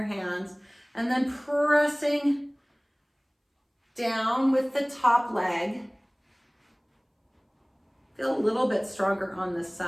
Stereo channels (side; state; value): both; identical; correlation 1.00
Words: hands, and then pressing down with the top leg. Feel a little bit stronger on this